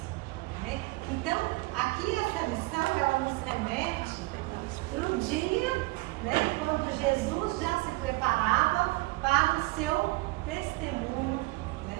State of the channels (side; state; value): left; quieter; 23.2 dB